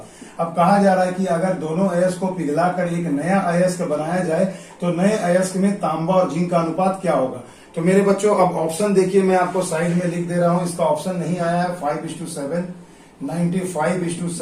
अब कहा जा रहा है कि अगर दोनों अयस्क को पिघलाकर एक नया अयस्क बनाया जाए तो नए अयस्क में तांबा और जिंक का अनुपात क्या होगा। तो मेरे बच्चों अब ऑप्शन देखिए, मैं आपको साइड में लिख दे रहा हूं, इसका ऑप्शन नहीं आया है 5:7,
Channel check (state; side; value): identical; both; correlation 1.00